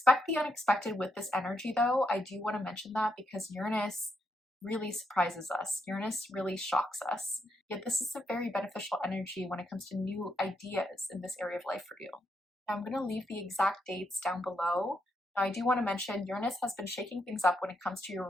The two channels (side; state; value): both; normal; correlation 0.79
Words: the unexpected with this energy though. I do want to mention that because Uranus really surprises us. Uranus really shocks us. Yet this is a very beneficial energy when it comes to new ideas in this area of life for you. Now I'm going to leave the exact dates down below. Now I do want to mention Uranus has been shaking things up when it comes to your